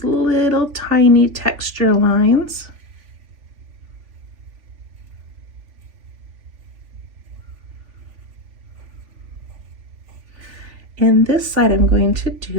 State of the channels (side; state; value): left; late; 3.5 ms